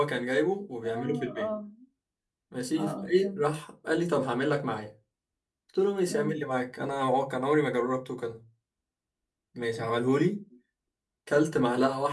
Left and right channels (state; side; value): identical; both; correlation 1.00